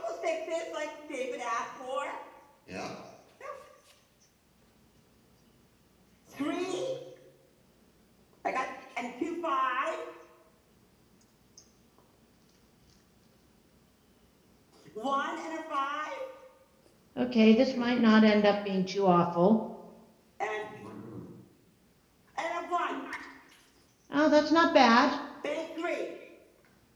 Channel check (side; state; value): both; identical; correlation 1.00